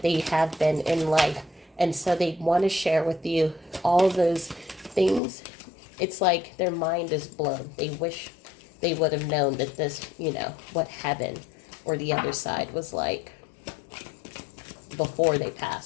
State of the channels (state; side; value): drops out; right; at 5.2 s